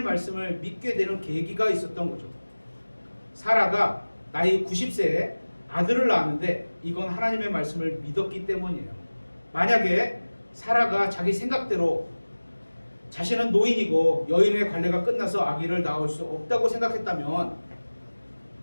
말씀을 믿게 되는 계기가 있었던 거죠. 사라가 나이 90세에 아들을 낳았는데 이건 하나님의 말씀을 믿었기 때문이에요. 만약에 사라가 자기 생각대로 자신은 노인이고 여인의 관례가 끝나서 아기를 낳을 수 없다고 생각했다면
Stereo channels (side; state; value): both; inverted; correlation -1.00